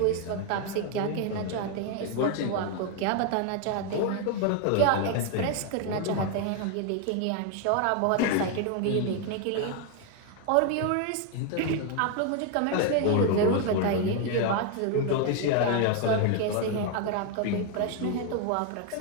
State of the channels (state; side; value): different; both; correlation 0.01